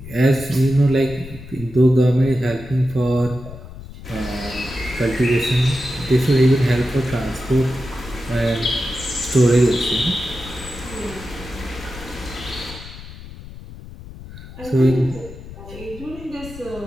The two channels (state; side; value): noise; left; rumble, 14 dB below the sound